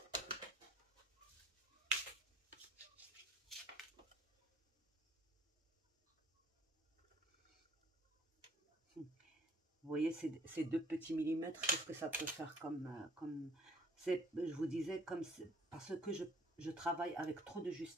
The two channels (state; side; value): normal; both; correlation 0.58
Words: Vous voyez ces 2 petits millimètres, qu'est-ce que ça peut faire comme je vous disais, parce que je travaille avec trop de